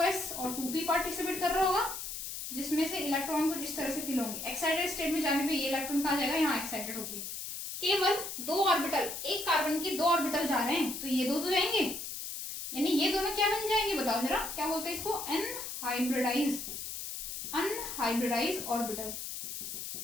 और 2p पार्टिसिपेट कर रहा होगा, जिसमें से इलेक्ट्रॉन कुछ इस तरह से फिल होंगे। एक्साइटेड स्टेट में जाने पे ये इलेक्ट्रॉन कहाँ जाएगा, यहाँ एक्साइटेड होगी। केवल 2 ऑर्बिटल, एक कार्बन के 2 ऑर्बिटल जा रहे हैं, तो ये 2 तो जाएंगे, यानी ये दोनों क्या बन जाएंगे बताओ जरा, क्या बोलते हैं इसको, अनहाइब्रिडाइज ऑर्बिटल।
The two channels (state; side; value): noise; left; hiss, 7 dB below the sound